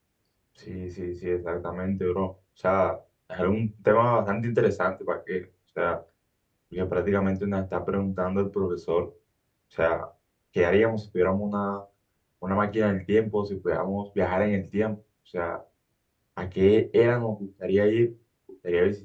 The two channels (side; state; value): both; identical; correlation 1.00